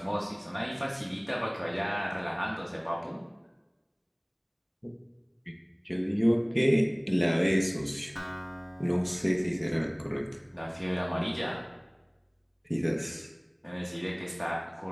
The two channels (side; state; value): both; identical; correlation 1.00